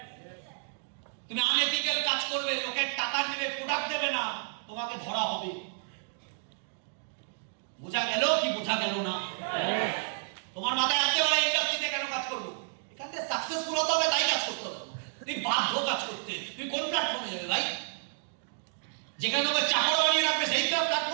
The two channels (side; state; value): left; silent; digital silence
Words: তুমি আনএথিক্যাল কাজ করবে, লোকের টাকা নেবে, প্রোডাক্ট দেবে না, তোমাকে ধরা হবে। বোঝা গেল কি বোঝা গেল না? তোমার মাথায় আসতে পারে ইন্ডাস্ট্রিতে কেন কাজ করবো, এখান থেকে সাকসেসফুল হতে হবে, তাই কাজ করতে হবে। তুমি বাধ্য কাজ করতে, তুমি কোন প্ল্যাটফর্মে যাবে ভাই? যেখানে তোমাকে চাকর বানিয়ে রাখবে সেই